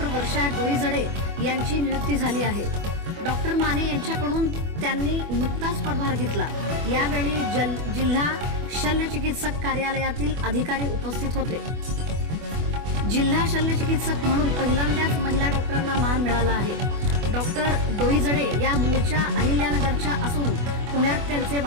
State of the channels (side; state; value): left; late; 24 ms